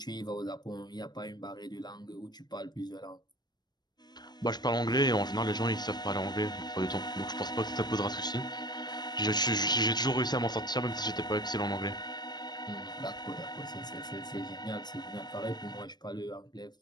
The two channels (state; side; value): late; right; 0.20 ms